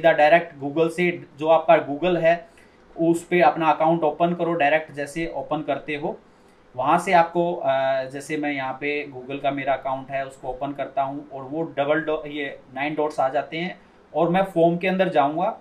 डायरेक्ट गूगल से, जो आपका गूगल है उस पर अपना अकाउंट ओपन करो। डायरेक्ट जैसे ओपन करते हो वहाँ से आपको जैसे मैं यहाँ पे गूगल का मेरा अकाउंट है उसको ओपन करता हूँ, और वो ये 9 डॉट्स आ जाते हैं, और मैं फॉर्म के अंदर जाऊँगा।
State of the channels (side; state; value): both; identical; correlation 1.00